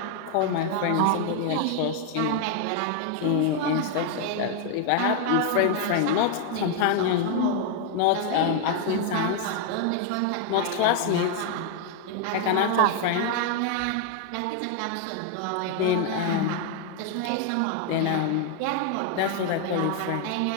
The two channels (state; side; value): different; both; correlation 0.00